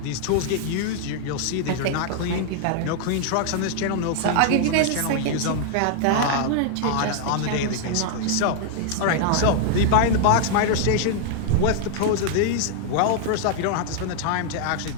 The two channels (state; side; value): different; both; correlation 0.00